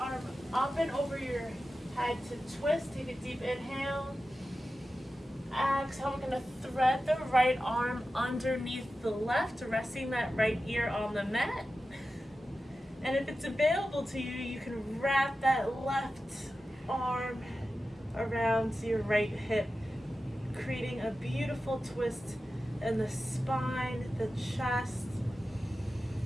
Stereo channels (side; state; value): both; normal; correlation 0.93